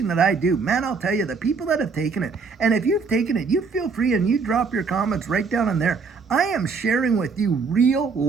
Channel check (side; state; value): left; quieter; 4.9 dB